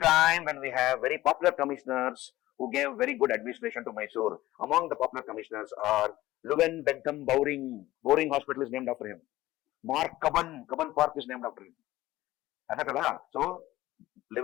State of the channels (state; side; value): quieter; right; 16.5 dB